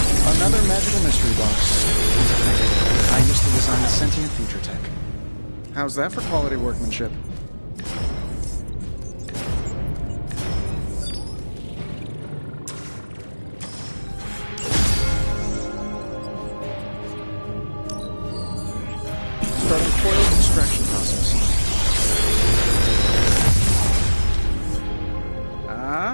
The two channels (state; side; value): inverted; both; correlation -1.00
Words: Another magical mystery box. I used to design sentient future tech. How's that for quality workmanship? Starting coil extraction process.